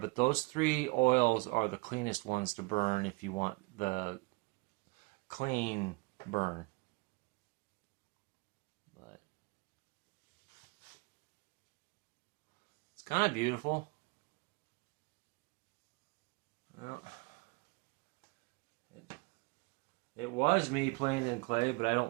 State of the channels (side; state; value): left; quieter; 26.1 dB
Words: those 3 oils are the cleanest ones to burn if you want the clean burn. But it's kind of beautiful. Well, it was me playing in clay, but I